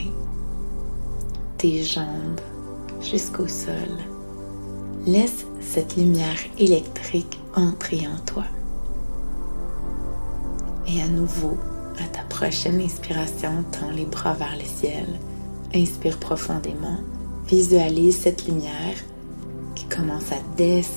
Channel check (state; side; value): inverted; both; correlation -1.00